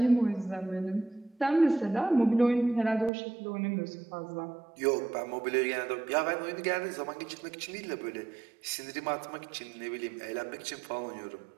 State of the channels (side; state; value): left; drops out; at 3.1 s